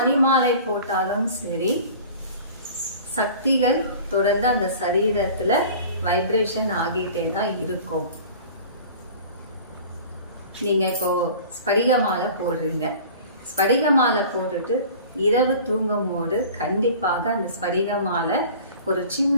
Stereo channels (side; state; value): both; inverted; correlation -0.43